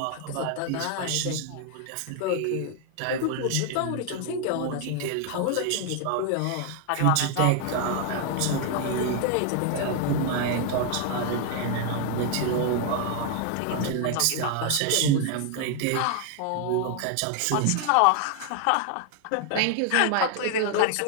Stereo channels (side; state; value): both; different; correlation 0.00